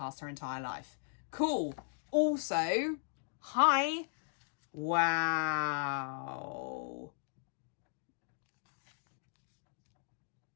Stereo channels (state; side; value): silent; right; digital silence